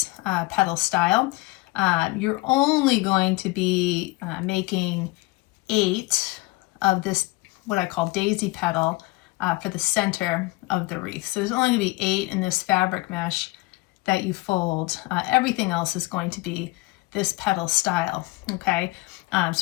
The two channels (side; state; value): right; quieter; 21.7 dB